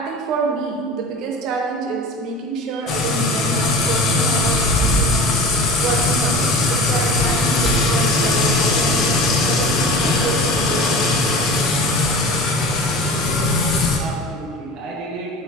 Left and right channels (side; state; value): both; normal; correlation 0.35